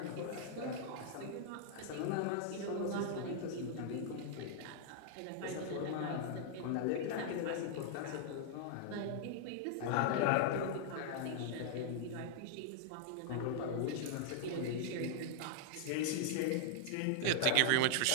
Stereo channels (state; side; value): different; both; correlation -0.01